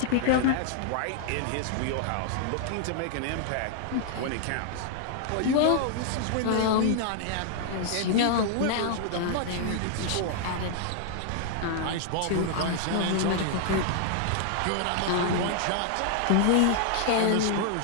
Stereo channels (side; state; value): both; different; correlation 0.00